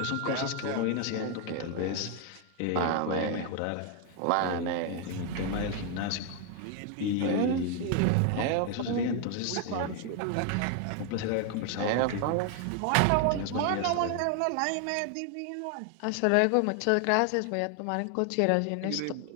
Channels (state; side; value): different; both; correlation 0.00